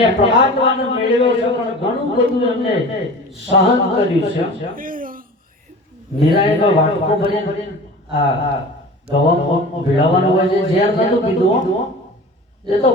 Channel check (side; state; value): both; normal; correlation 0.38